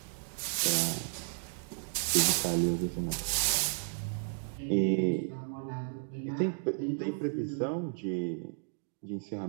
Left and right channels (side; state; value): left; silent; digital silence